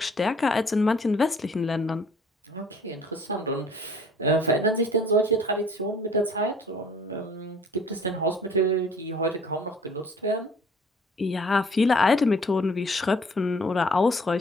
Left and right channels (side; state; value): both; normal; correlation 0.54